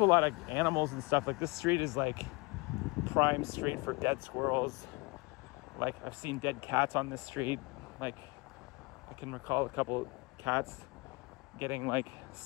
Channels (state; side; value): quieter; right; 26.5 dB